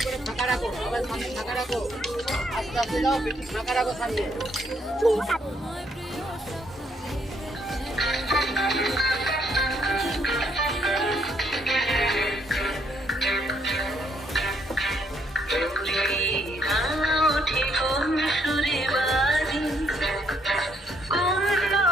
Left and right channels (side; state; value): both; normal; correlation 0.71